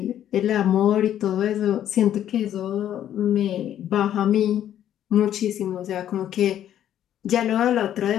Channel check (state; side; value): quieter; right; 10.9 dB